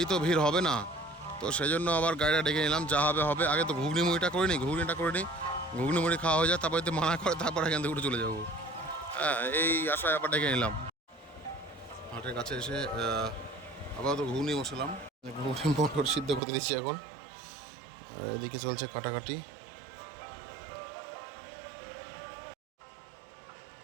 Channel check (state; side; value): drops out; left; at 16.4 s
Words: তো ভিড় হবে না, তো সেই জন্য আবার গাড়িটা ডেকে নিলাম, যা হবে হবে। আগে তো ঘুগনি মুড়িটা করে নিই, ঘুগনি মুড়ি খাওয়া হয়ে যায়, তারপরে তো মানা করে তারপর এখান থেকে উঠে চলে যাবো। হ্যাঁ, এই আশায় আবার ডেকে নিলাম। হাটের কাছে এসে আবার তো ঘুগনি বসালাম, ঘুগনি মটর সিদ্ধ করতে দিচ্ছি এখন। এদিকে চলছে কাটাকাটি।